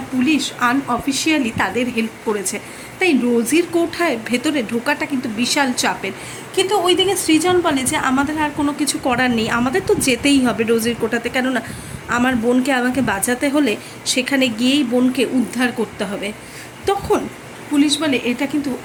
পুলিশ আনঅফিসিয়ালি তাদের হেল্প করেছে। তাই রোজির কোঠায় ভেতরে ঢোকাটা কিন্তু বিশাল চাপের। কিন্তু ওইদিকে সৃজন বলে যে আমাদের আর কোনো কিছু করার নেই, আমাদের তো যেতেই হবে রোজির কোঠাতে, কেননা আমার বোনকে আমাকে বাঁচাতে হলে সেখানে গিয়েই বোনকে উদ্ধার করতে হবে। তখন পুলিশ বলে এটা কিন্তু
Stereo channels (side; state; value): both; identical; correlation 1.00